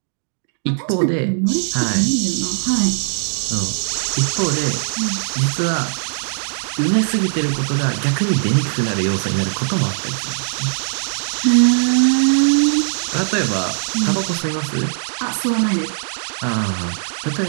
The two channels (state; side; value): silent; left; digital silence